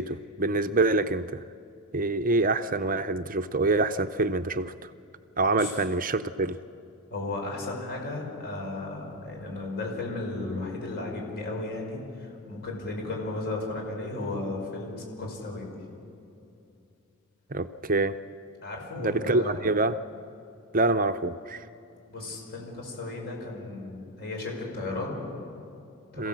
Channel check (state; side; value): normal; both; correlation 0.03